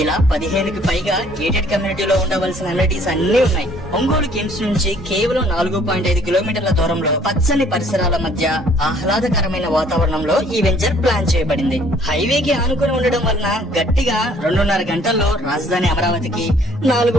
ఇలా 15కి పైగా గేటెడ్ కమ్యూనిటీలో ఉండవలసిన అమ్యూనిటీస్ అన్ని ఉన్నాయి. ఒంగోలు కిమ్స్ నుంచి కేవలం 4.5 కిలోమీటర్ల దూరంలో పచ్చని పరిసరాల మధ్య ఆహ్లాదకరమైన వాతావరణంలో ఈ వెంచర్ ప్లాన్ చేయబడింది. హైవేకి ఆనుకుని ఉండడం వలన గట్టిగా 2.5 గంటల్లో రాజధాని అమరావతికి,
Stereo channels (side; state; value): both; normal; correlation 0.59